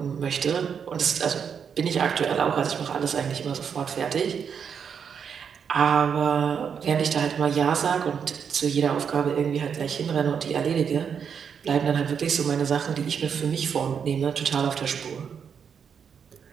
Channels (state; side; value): quieter; left; 7.1 dB